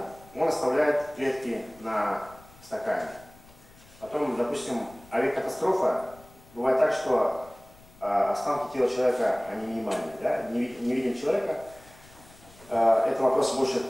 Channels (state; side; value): noise; left; rumble, 24 dB below the sound